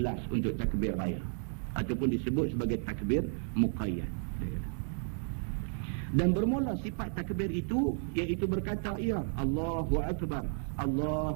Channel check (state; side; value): silent; left; 56 dB below the other